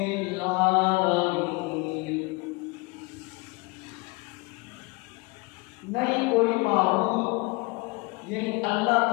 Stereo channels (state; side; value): quieter; right; 26.3 dB